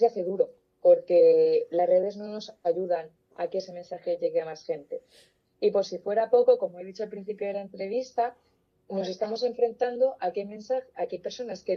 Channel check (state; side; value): identical; both; correlation 1.00